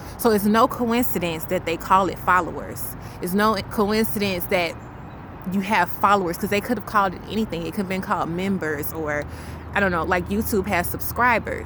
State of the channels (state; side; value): identical; both; correlation 1.00